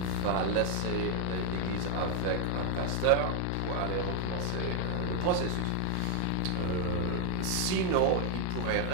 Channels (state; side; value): different; both; correlation 0.00